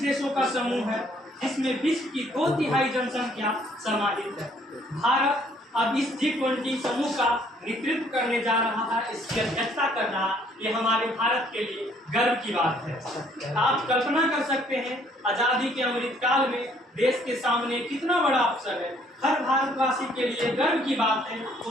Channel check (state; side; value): normal; both; correlation 0.63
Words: देशों का समूह है जिसमें विश्व की 2/3 जनसंख्या समाहित है। भारत अब इस G20 समूह का नेतृत्व करने जा रहा है, इसकी अध्यक्षता कर रहा है। ये हमारे भारत के लिए गर्व की बात है। आप कल्पना कर सकते हैं आजादी के अमृत काल में देश के सामने कितना बड़ा अवसर है। हर भारतवासी के लिए गर्व की बात है,